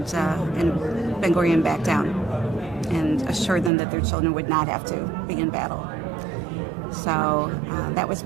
Ben-Gurion backed down and assured them that their children would not have to be in battle. So that was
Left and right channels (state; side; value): drops out; left; at 3.7 s